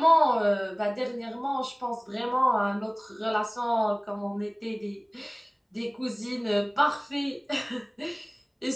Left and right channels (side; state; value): both; identical; correlation 1.00